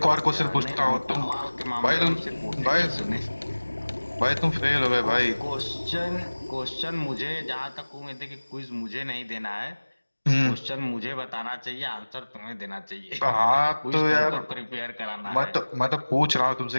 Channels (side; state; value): both; inverted; correlation -1.00